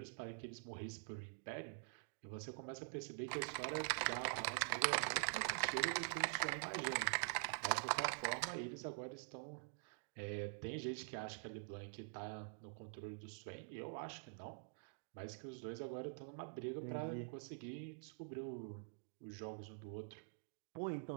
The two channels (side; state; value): left; silent; digital silence